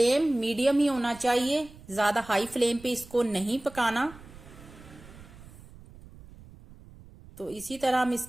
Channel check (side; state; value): right; noise; rumble, 20 dB below the sound